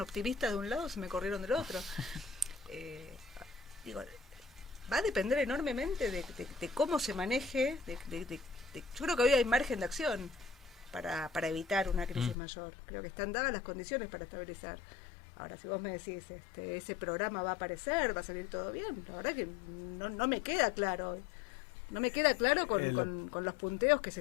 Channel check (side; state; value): right; drops out; at 12.4 s